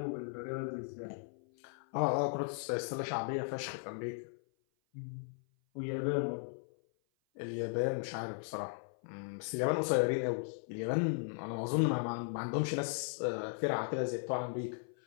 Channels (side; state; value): right; silent; 53 dB below the other